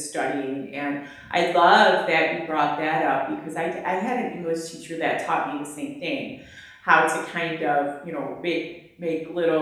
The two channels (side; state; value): both; identical; correlation 1.00